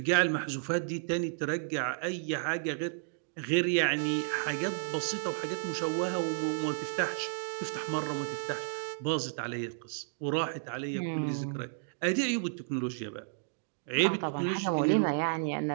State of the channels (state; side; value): silent; left; digital silence